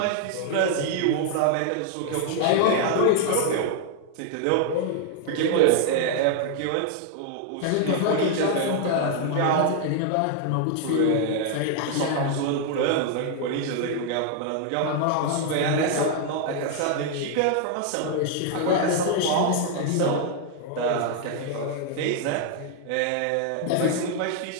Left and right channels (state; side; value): different; both; correlation 0.00